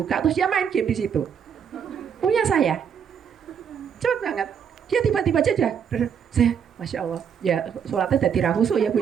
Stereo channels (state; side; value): quieter; left; 7.7 dB